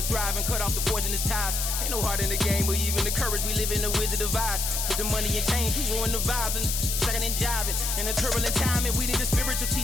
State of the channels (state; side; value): noise; left; hiss, 1 dB below the sound